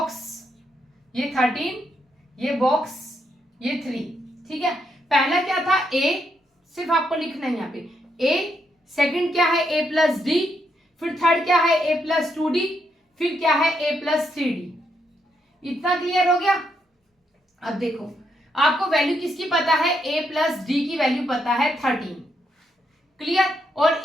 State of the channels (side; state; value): both; normal; correlation 0.79